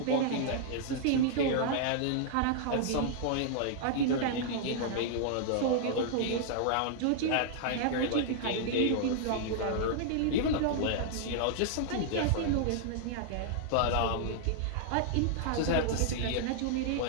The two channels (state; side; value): different; both; correlation -0.01